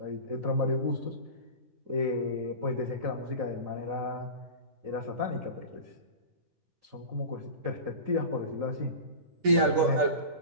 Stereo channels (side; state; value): left; late; 10 ms